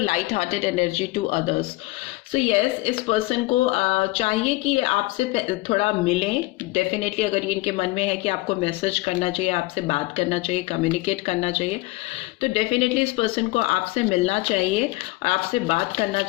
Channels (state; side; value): quieter; right; 20.8 dB